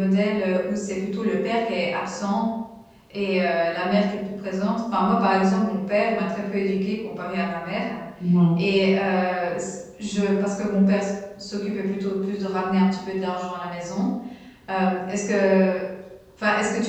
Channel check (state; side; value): identical; both; correlation 1.00